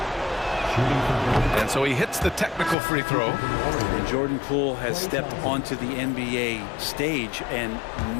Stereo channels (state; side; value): drops out; right; at 2.8 s